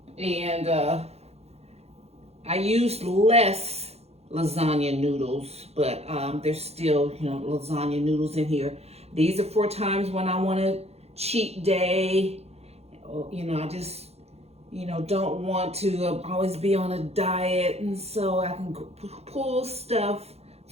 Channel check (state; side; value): late; left; 0.30 ms